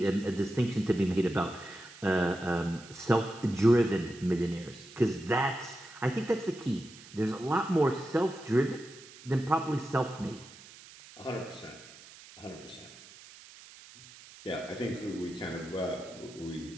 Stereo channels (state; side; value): noise; right; hiss, 19 dB below the sound